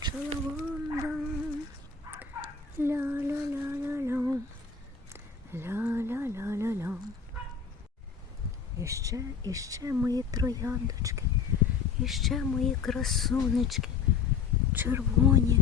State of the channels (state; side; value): quieter; right; 6.0 dB